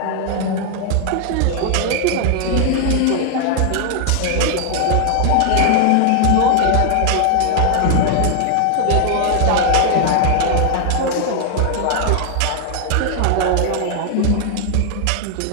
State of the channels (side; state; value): both; different; correlation 0.00